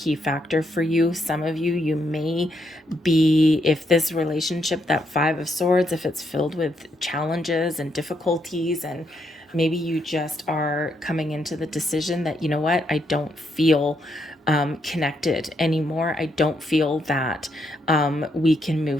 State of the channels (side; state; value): both; normal; correlation 0.77